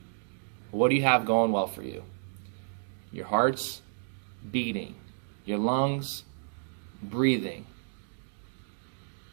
what do you have going well for you? Your heart's beating. Your lungs breathing.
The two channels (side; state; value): left; silent; digital silence